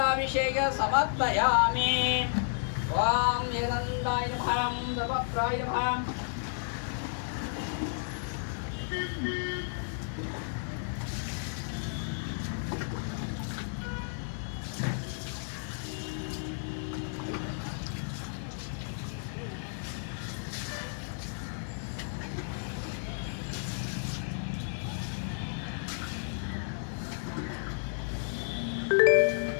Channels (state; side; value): silent; right; 56 dB below the other